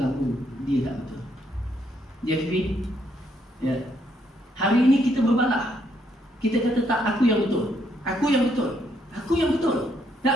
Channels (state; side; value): normal; both; correlation 0.73